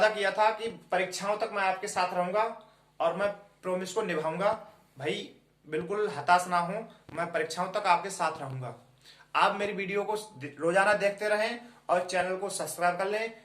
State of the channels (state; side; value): identical; both; correlation 1.00